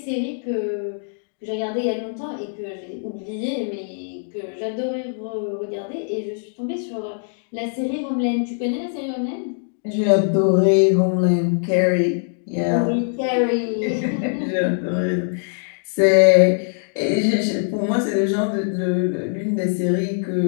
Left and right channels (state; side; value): silent; right; digital silence